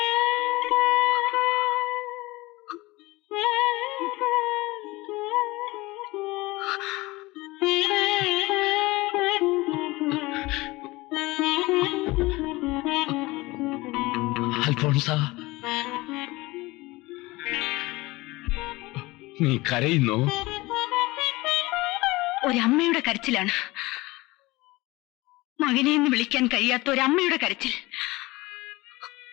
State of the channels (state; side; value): quieter; right; 21.2 dB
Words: അൽഫോൺസ, നീ കരയുന്നോ? ഒരമ്മയുടെ കരച്ചിലാണ്. മകനെ എന്ന് വിളിക്കാൻ കഴിയാത്ത ഒരമ്മയുടെ കരച്ചിൽ.